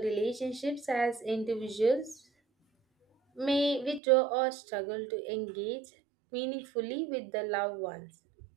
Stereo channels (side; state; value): left; drops out; at 4.0 s